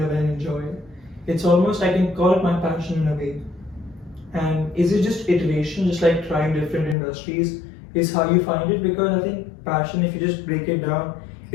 and enjoy, it's almost, I can call it my passion in a way. And is it just iteration, just like trying different industries, is how you find it? Because I think passion, if you just break it down,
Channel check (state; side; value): drops out; right; at 7.0 s